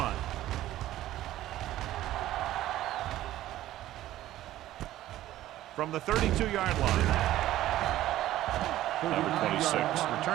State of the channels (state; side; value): quieter; left; 14.3 dB